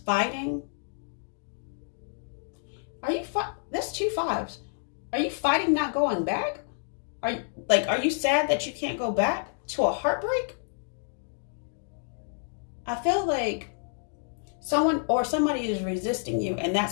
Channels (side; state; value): right; silent; digital silence